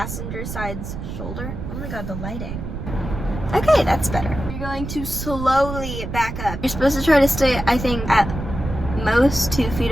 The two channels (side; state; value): right; noise; rumble, 7 dB below the sound